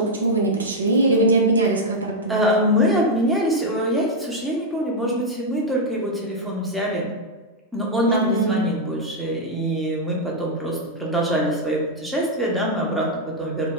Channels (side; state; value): both; normal; correlation -0.01